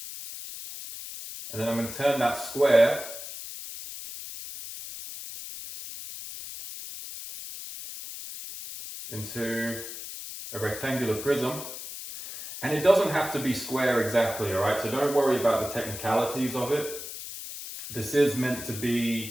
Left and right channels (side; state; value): left; noise; hiss, 10 dB below the sound